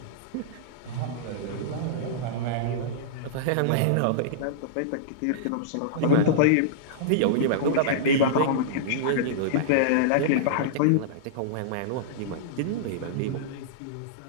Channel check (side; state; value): both; different; correlation -0.03